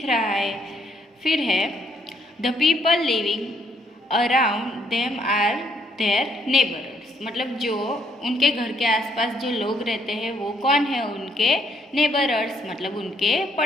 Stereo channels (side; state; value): both; normal; correlation 0.70